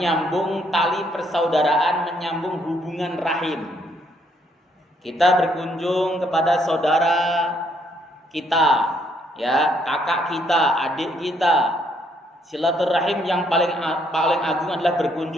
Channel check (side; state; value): both; normal; correlation 0.70